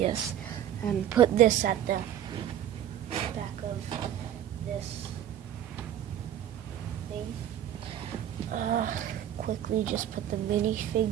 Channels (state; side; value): quieter; left; 10.8 dB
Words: And put this at the back of this thing. Quickly just put the